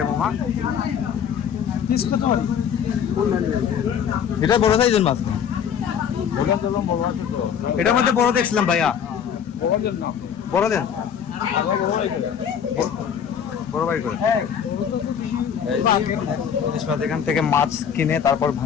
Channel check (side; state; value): right; quieter; 7.9 dB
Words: মামা? এটা বড় সাইজের মাছ না, এটার মধ্যে বড় দেখছিলাম ভাইয়া। বড় দেন, বড় বাড়ি করে। ইলিশ মাছ এখান থেকে মাছ কিনে তারপর